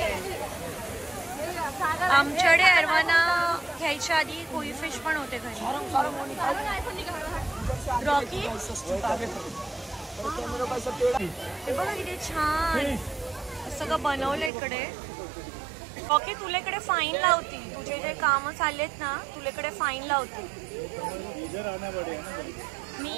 आमच्याकडे अरवाना घ्यायच्या आधी कोई फिश पण होते घरी. रॉकी हे बघा किती छान सगळं बनवलं इकडे. रॉकी तुला इकडे फाईन लावती, तुझे जे कामं चाललेत ना, तुला इकडे फाईन लावते.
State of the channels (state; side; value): drops out; left; at 14.5 s